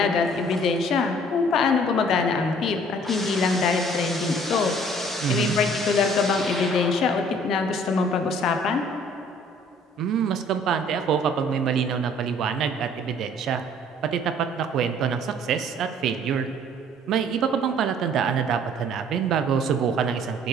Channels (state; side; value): normal; both; correlation 0.55